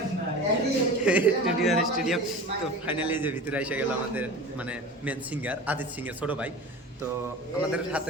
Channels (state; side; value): normal; both; correlation 0.34